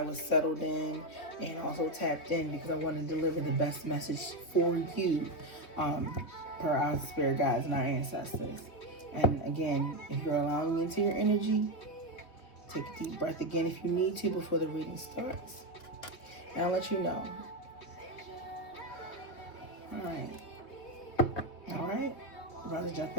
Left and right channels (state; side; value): late; right; 3.4 ms